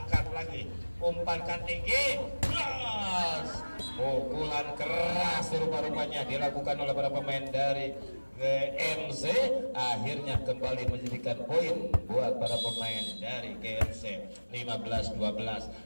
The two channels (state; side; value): inverted; both; correlation -1.00